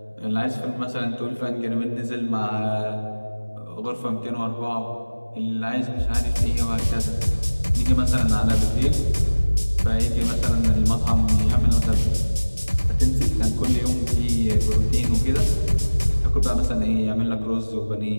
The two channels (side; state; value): both; inverted; correlation -1.00